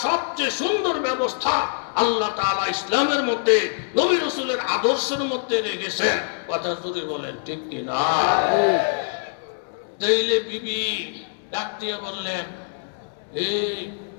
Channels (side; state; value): right; silent; 60 dB below the other